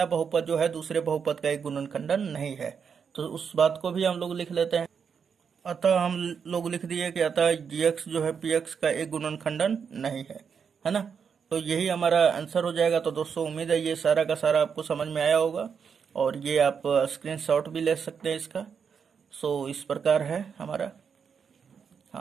बहुपद जो है दूसरे बहुपद का एक गुणनखंडन नहीं है। तो उस बात को भी हम लोग लिख लेते हैं। अतः हम लोग लिख दिए कि अतः gx जो है px का एक गुणनखंडन नहीं है ना। तो यही हमारा आंसर हो जाएगा। तो दोस्तों उम्मीद है ये सारा का सारा आपको समझ में आया होगा, और ये आप स्क्रीनशॉट भी ले सकते हैं इसका। सो इस प्रकार है हमारा।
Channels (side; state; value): left; quieter; 6.6 dB